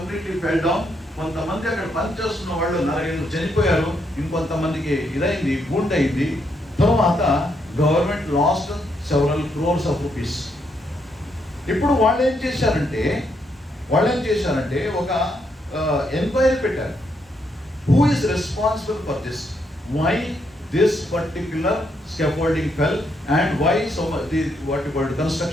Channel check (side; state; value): both; normal; correlation 0.77